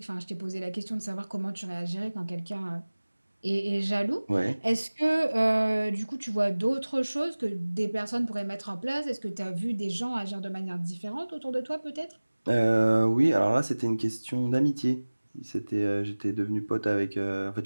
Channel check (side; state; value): both; inverted; correlation -1.00